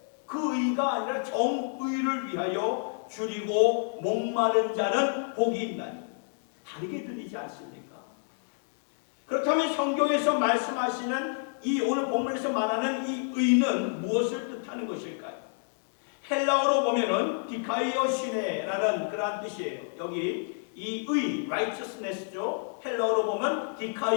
그 의가 아니라 정의를 위하여 줄이고 목마른 자는 복이 있나니 다르게 들리지 않습니까? 그렇다면 성경에서 말씀하시는 이 오늘 본문에서 말하는 이 의는 무엇을 뜻하는 것일까요? 헬라어로 보면은 디카이오시네라는 그러한 뜻이에요. 여기 이 의, righteousness죠. 헬라어로 보면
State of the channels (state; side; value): silent; right; 58 dB below the other